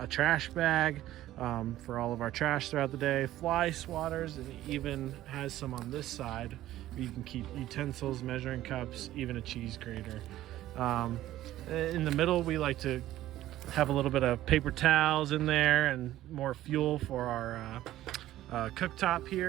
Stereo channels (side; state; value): left; quieter; 14.3 dB